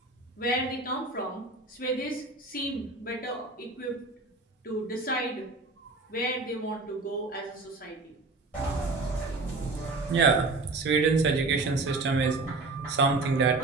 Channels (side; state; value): left; quieter; 3.5 dB